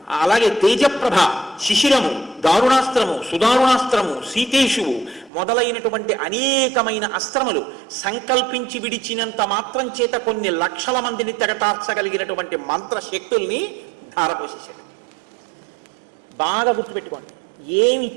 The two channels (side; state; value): left; drops out; at 5.3 s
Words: అలాగే తేజప్రభ, శిశిరము, దారుణాస్త్రము, సుదారుణాస్త్రము, సీతేషువు మొదలైనటువంటి అనేకమైన అస్త్రములు సంకల్పించి విడిచినంత మాత్రం చేత కొన్ని లక్షల మందిని తెగటార్చగలిగినటువంటి మంత్రశక్తుల్ని ధారపోసేశాడు. బాగా గుర్తుపెట్టుకోండి,